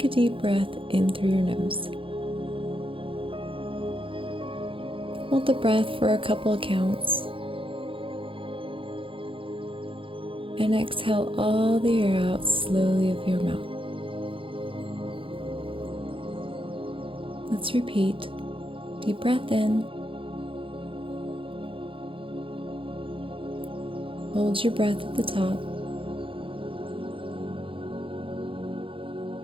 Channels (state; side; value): late; left; 0.25 ms